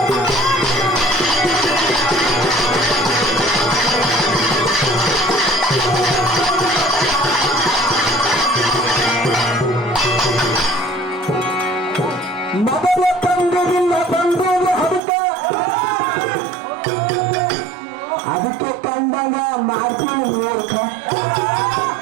ಮೊದಲ ತಂಗುವಿಲ್ಲ ಬಂದೂರು ಹಡುಕ ಅದಕ್ಕೆ ಕಂಡಂಗ ಮಾಡ್ತೀನಿ ಮೂರ್ಖ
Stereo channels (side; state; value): left; drops out; at 15.0 s